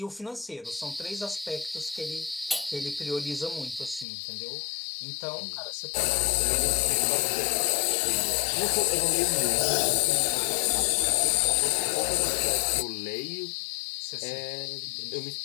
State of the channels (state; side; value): drops out; right; at 4.0 s